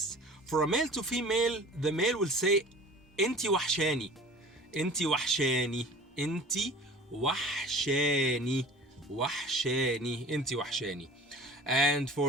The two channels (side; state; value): both; normal; correlation 0.43